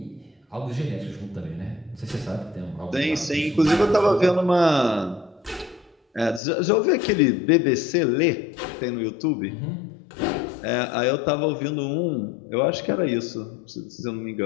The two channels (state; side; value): drops out; right; at 6.4 s